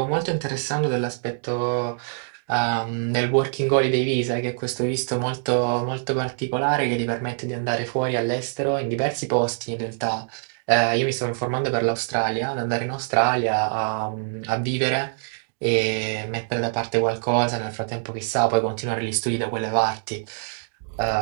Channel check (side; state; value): left; silent; digital silence